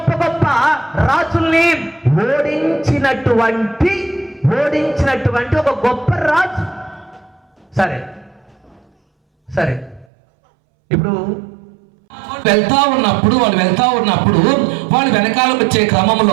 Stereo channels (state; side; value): drops out; left; at 10.1 s